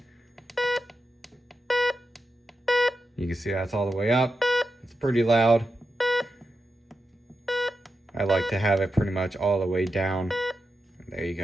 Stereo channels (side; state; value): both; normal; correlation 0.88